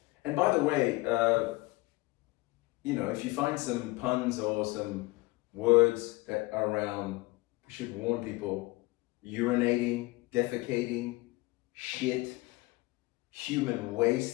and by the way, if you find some puns or some words that are around, we should warn people: urinating, defecating, shit, human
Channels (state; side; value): quieter; right; 22.0 dB